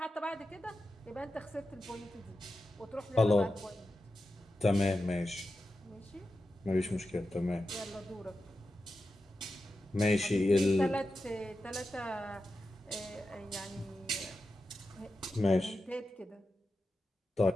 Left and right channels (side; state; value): both; normal; correlation 0.91